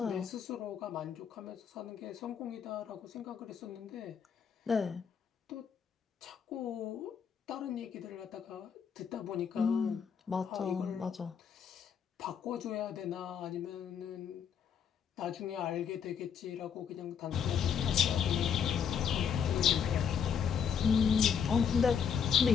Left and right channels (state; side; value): quieter; right; 7.4 dB